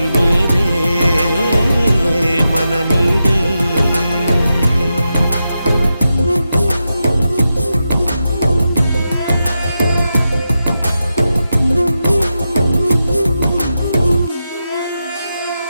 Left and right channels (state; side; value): inverted; both; correlation -0.89